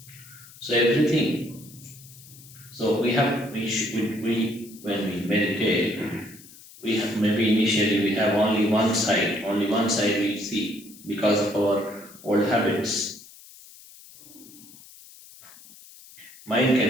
So everything. So we when we meditate, we have maybe initially we have only one side we see because of our old habits. Mind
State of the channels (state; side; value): noise; left; hiss, 21 dB below the sound